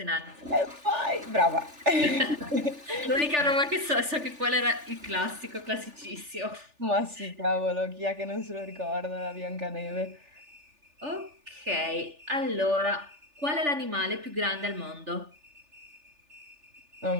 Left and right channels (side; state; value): left; late; 3.4 ms